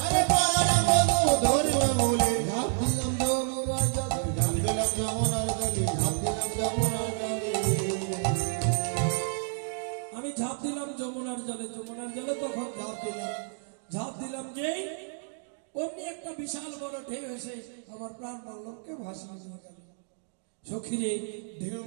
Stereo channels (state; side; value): silent; left; digital silence